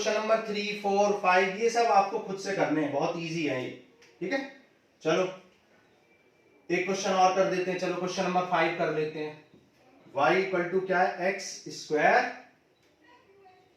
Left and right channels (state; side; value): identical; both; correlation 1.00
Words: नंबर 3, 4, 5 ये सब आपको खुद से करने हैं, बहुत इजी है ये, ठीक है। चलो एक क्वेश्चन और कर देते हैं, चलो क्वेश्चन नंबर 5 कर लेते हैं। y इक्वल टू क्या है x²